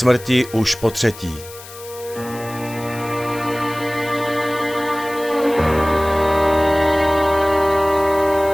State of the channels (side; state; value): left; noise; hiss, 17 dB below the sound